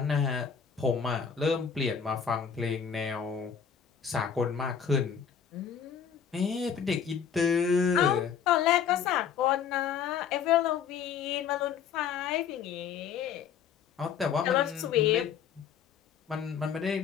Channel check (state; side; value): quieter; right; 7.4 dB